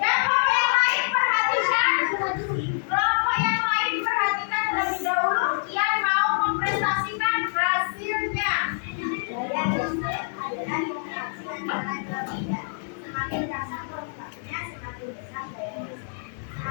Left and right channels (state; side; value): silent; right; digital silence